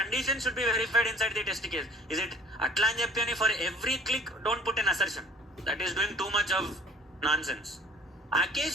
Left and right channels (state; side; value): normal; both; correlation 0.51